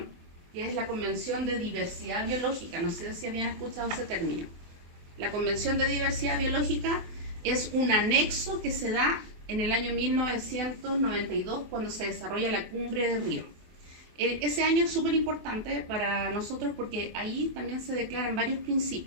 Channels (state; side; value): late; left; 23 ms